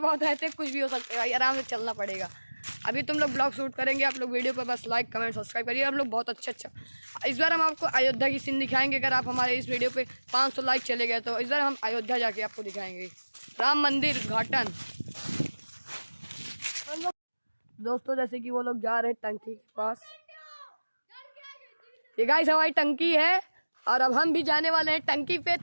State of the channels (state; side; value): inverted; both; correlation -1.00